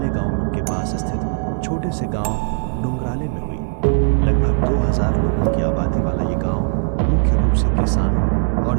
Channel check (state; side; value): silent; left; digital silence